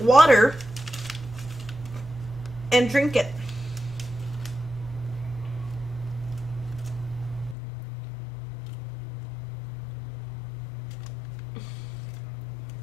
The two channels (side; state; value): right; drops out; at 7.6 s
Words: water and drink it.